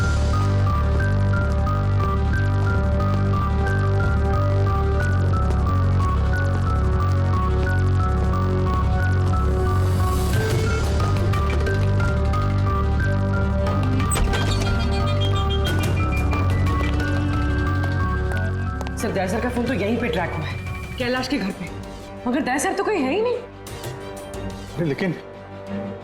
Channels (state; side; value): identical; both; correlation 1.00